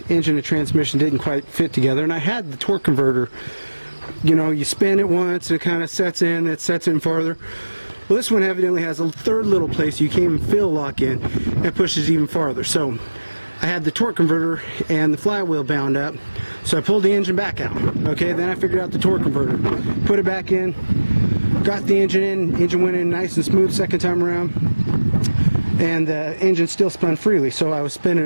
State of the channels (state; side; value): inverted; both; correlation -1.00